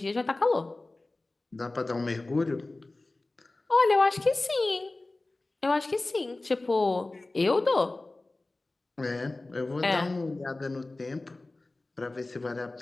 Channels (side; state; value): right; quieter; 3.0 dB